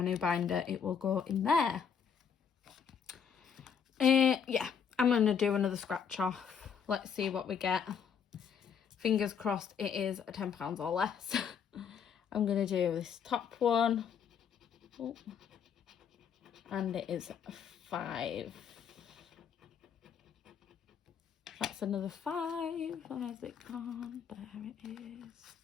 new binder, it will go in there. Yeah, I'm going to do another scratch off. Let's see what we get. Fingers crossed it is £10 or less. I'm going to do this top one. Oh. And it is 5. That's another 5. Where's it gone? There it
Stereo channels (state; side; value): quieter; right; 7.2 dB